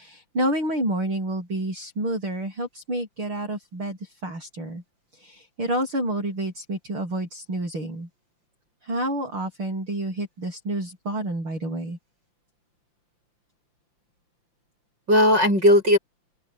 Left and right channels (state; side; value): late; left; 5.8 ms